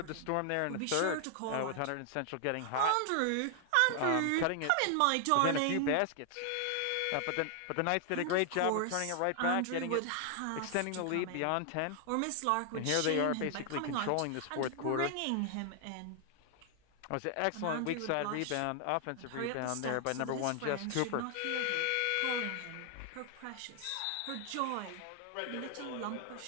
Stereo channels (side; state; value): both; different; correlation 0.00